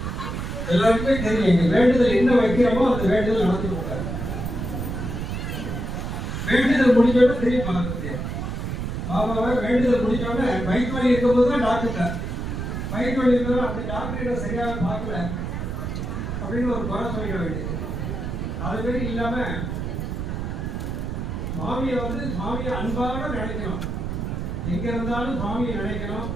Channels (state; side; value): noise; right; rumble, 4 dB below the sound